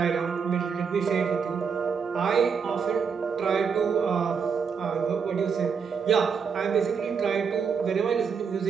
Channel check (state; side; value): quieter; left; 6.2 dB